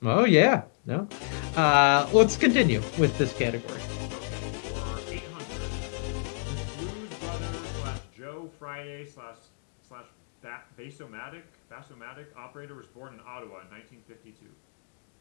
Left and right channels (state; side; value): silent; right; digital silence